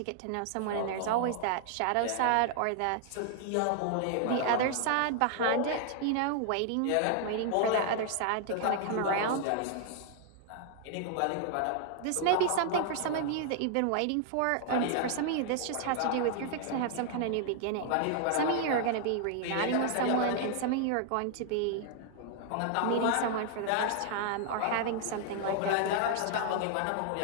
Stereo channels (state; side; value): different; both; correlation 0.00